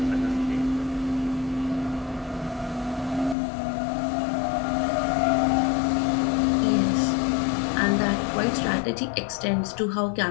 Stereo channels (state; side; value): drops out; right; at 3.4 s